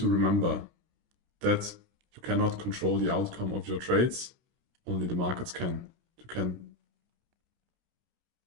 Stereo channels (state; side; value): late; left; 30 ms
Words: remember that you cannot control the outcome of your trades, only the markets can. You can